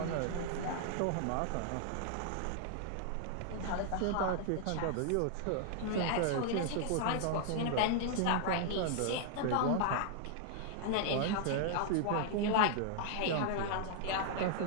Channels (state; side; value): different; both; correlation -0.01